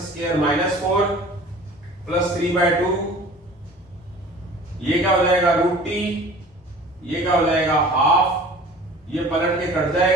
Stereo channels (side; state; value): both; normal; correlation 0.44